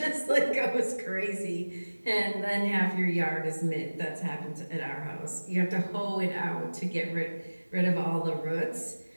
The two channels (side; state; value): both; inverted; correlation -1.00